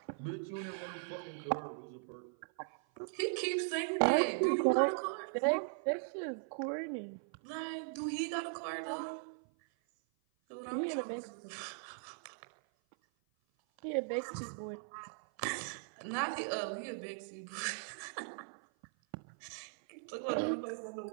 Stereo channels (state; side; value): silent; left; 52 dB below the other